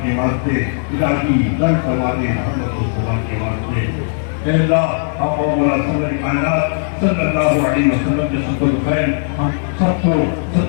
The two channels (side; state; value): right; silent; 56 dB below the other